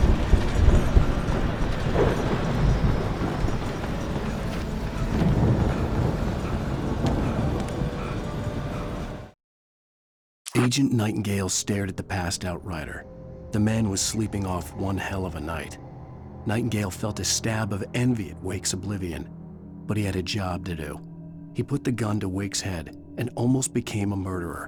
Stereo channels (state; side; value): identical; both; correlation 1.00